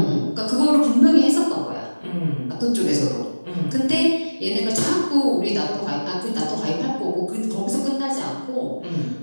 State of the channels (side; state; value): both; inverted; correlation -1.00